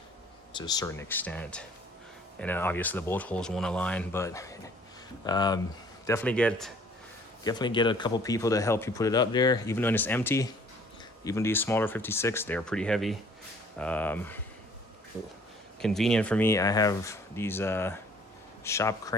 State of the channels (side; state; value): both; normal; correlation 0.56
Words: to a certain extent. And then obviously the bolt holes won't align, but definitely get a couple people to help you put it up there, even when it's empty. Even these smaller 56, they're pretty heavy. Convenient for me, I have these shop